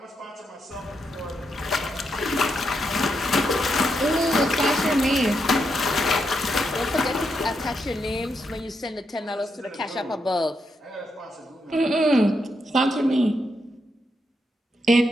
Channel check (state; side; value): normal; both; correlation 0.82